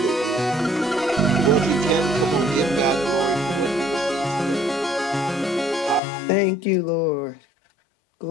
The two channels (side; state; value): right; drops out; at 6.0 s